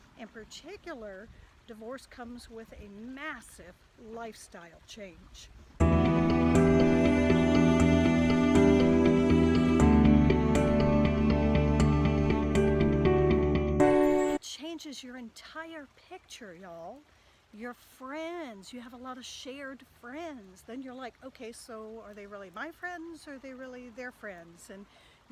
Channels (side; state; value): both; identical; correlation 1.00